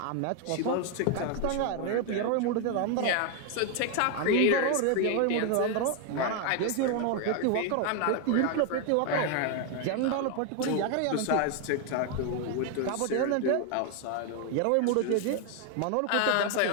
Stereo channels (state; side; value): different; both; correlation 0.01